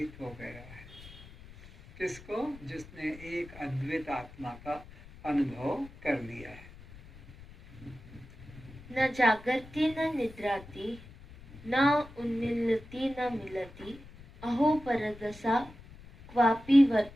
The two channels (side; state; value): left; noise; rumble, 19 dB below the sound